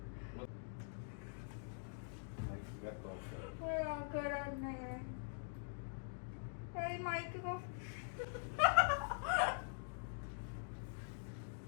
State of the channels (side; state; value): right; silent; digital silence